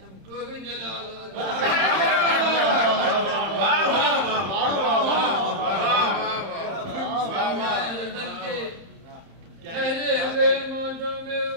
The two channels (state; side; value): late; left; 31 ms